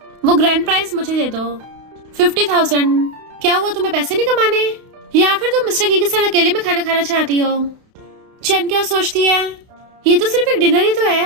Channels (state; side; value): late; left; 31 ms